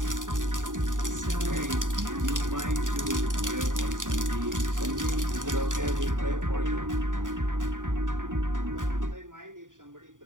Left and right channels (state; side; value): late; left; 0.88 ms